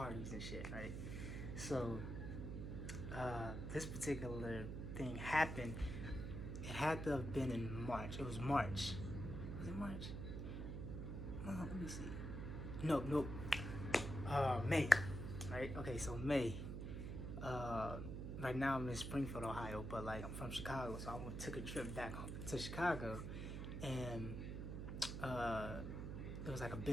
and shit, right? So this particular thing happened. It had to have been in March. It was March. Was it March? Let me see. Nope. May. Right? Okay, so May. Right now I'm in Springfield, Ohio, but like I'm from Chicago, so I took a trip back to Chicago, and it was like a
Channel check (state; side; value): noise; right; hum, 5 dB below the sound